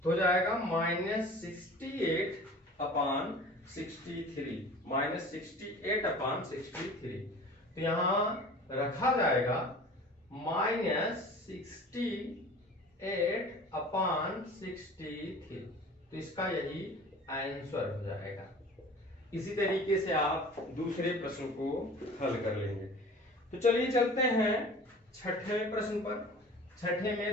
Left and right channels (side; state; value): both; normal; correlation 0.42